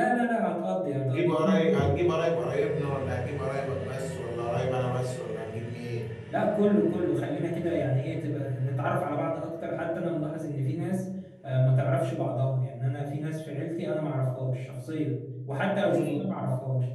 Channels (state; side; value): identical; both; correlation 1.00